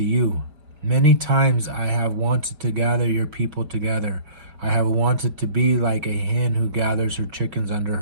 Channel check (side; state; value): left; late; 4.9 ms